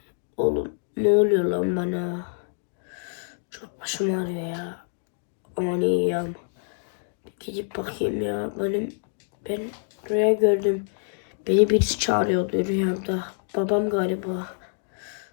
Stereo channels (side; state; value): right; silent; digital silence